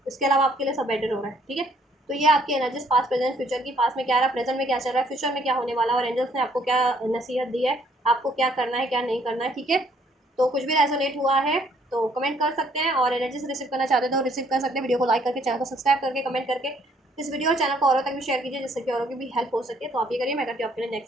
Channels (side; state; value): both; normal; correlation 0.65